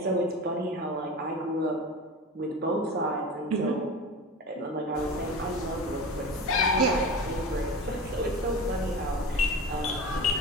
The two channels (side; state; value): both; normal; correlation 0.31